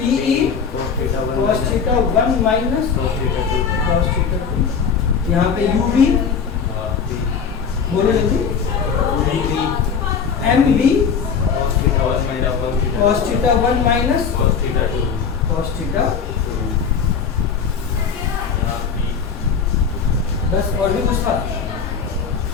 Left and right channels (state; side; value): quieter; right; 6.3 dB